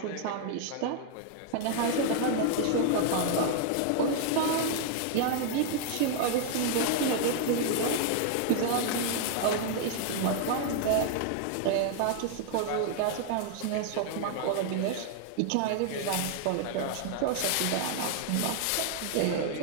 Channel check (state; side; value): different; both; correlation 0.00